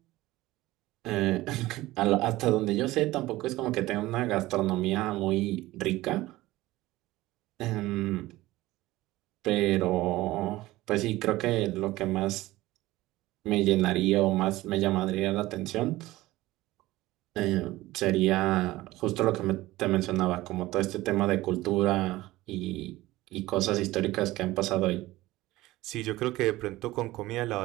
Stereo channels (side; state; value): left; quieter; 17.8 dB